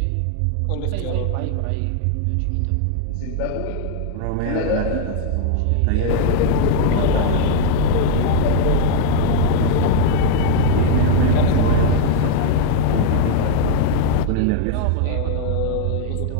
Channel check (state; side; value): different; both; correlation 0.00